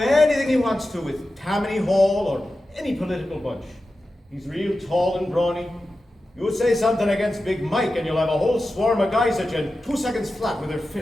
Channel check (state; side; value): normal; both; correlation 0.93